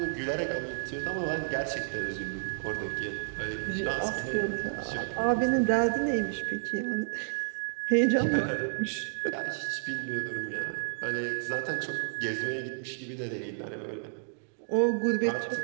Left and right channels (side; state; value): left; silent; digital silence